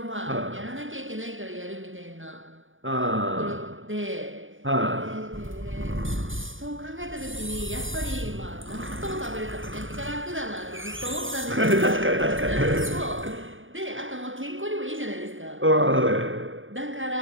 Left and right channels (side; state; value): left; late; 0.57 ms